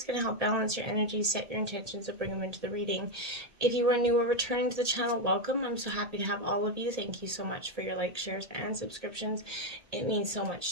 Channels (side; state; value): left; late; 1.8 ms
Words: going to help balance your energy, set your intentions, and bring them into the reading. If you are new or returning to the channel, welcome. I'm so happy to have all of you. Thank you so much for your likes, shares, and subscriptions. It means so